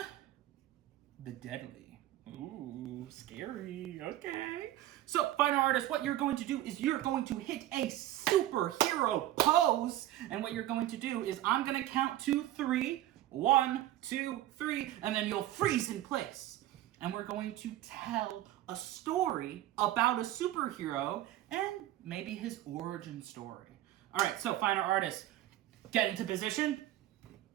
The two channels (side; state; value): left; quieter; 13.9 dB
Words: the Deadly. Ooh, scary. Okay. So, finer artist, what you're going to do is you're going to hit a superhero pose. And what you're going to do is I'm going to count to 3. 1, 2, 3, and then you'll freeze in place. And we're going to tell a story about a superhero and maybe his origin story. All right, so finer artists, get into position.